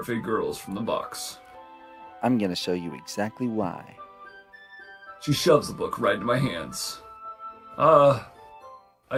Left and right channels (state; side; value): identical; both; correlation 1.00